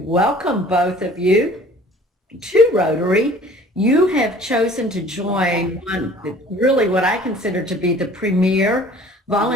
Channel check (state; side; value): normal; both; correlation 0.49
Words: welcome both of you to Rotary. You have chosen to join really what I consider to be the premier